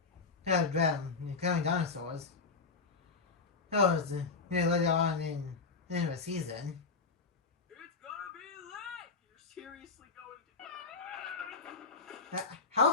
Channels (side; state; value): right; quieter; 4.5 dB